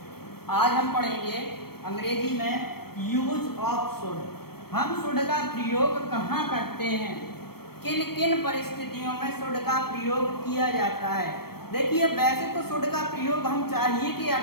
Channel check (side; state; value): right; late; 0.95 ms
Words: आज हम पढ़ेंगे अंग्रेजी में यूज ऑफ शुड। हम शुड का प्रयोग कहाँ करते हैं, किन किन परिस्थितियों में शुड का प्रयोग किया जाता है। देखिए, वैसे तो शुड का प्रयोग हम चाहिए के